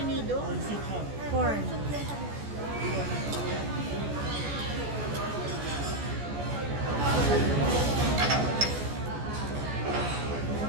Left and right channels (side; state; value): left; late; 14 ms